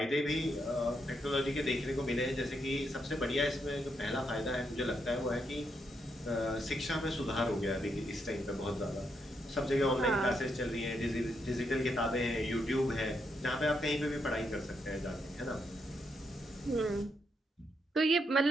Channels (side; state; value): both; normal; correlation 0.79